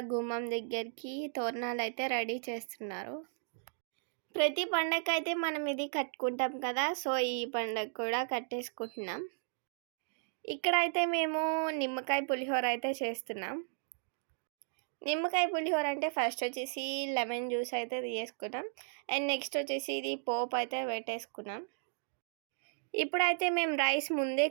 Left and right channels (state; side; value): silent; left; digital silence